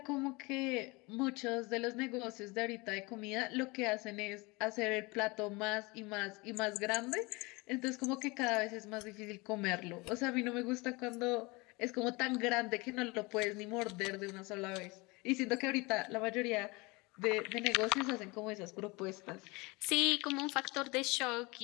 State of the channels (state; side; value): quieter; right; 25.3 dB